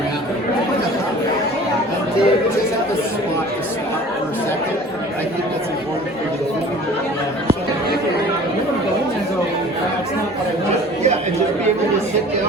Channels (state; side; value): normal; both; correlation 0.45